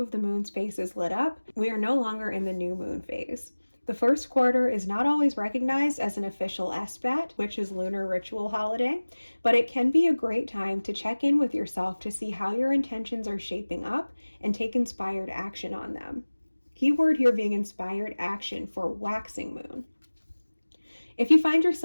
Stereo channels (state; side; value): inverted; both; correlation -1.00